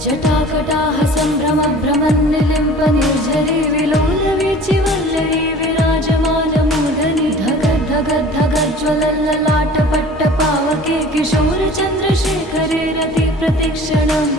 जटाकटाः सम्भ्रमभ्रमन्निलिम्पनिर्झरी विलोलवीचिवल्लरी विराजमानमूर्धनि धगद्धगद्धगज्ज्वलल्ललाटपट्टपावके किशोरचन्द्रशेखरे रति प्रतिक्षणं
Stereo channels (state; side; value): normal; both; correlation 0.44